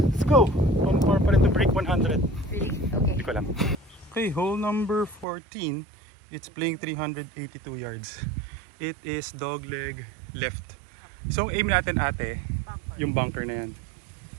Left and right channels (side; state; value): left; drops out; at 5.2 s